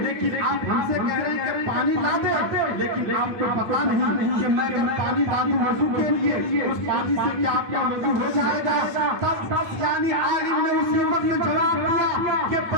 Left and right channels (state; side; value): late; left; 9.6 ms